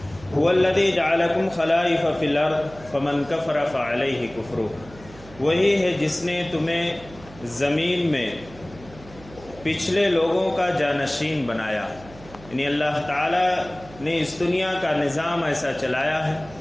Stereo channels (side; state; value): right; noise; hum, 20 dB below the sound